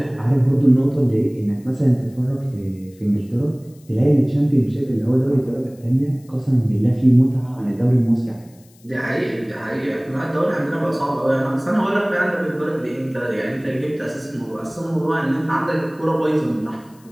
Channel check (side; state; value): left; noise; hiss, 29 dB below the sound